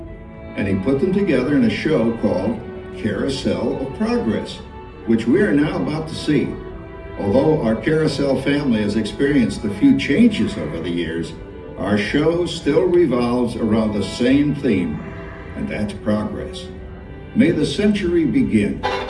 And he put them together in a show called Carousel of Progress, which we are now about to see. Although our Carousel family has experienced a few changes over the years, our show still revolves around the same theme, and that's progress. May the century begin.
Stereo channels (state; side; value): identical; both; correlation 1.00